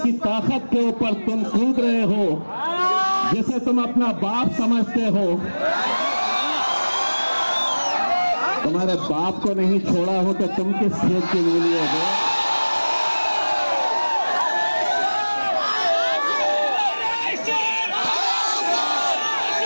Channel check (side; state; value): both; inverted; correlation -1.00